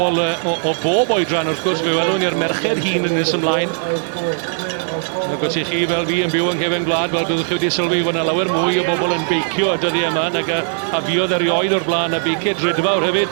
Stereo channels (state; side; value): silent; left; 67 dB below the other